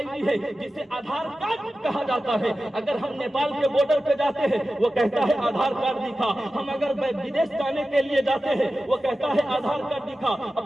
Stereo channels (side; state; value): both; normal; correlation 0.94